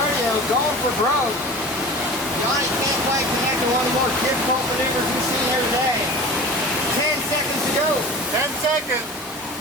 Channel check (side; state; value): both; normal; correlation 0.36